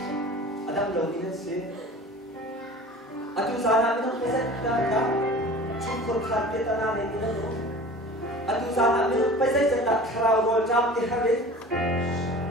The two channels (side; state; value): both; normal; correlation 0.41